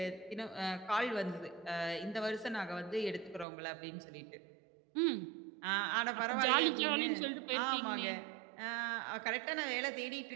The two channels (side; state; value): left; drops out; at 3.5 s